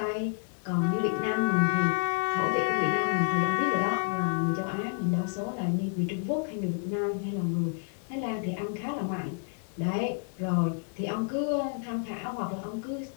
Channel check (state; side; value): silent; right; 58 dB below the other